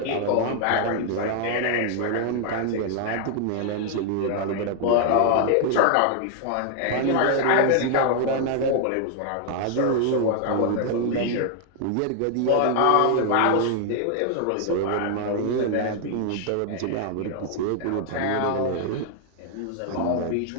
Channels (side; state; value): both; different; correlation 0.00